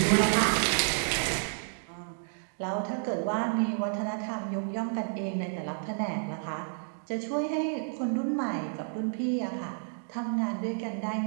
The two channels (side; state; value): left; silent; digital silence